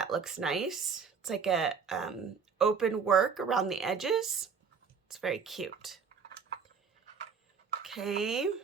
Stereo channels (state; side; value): quieter; left; 6.0 dB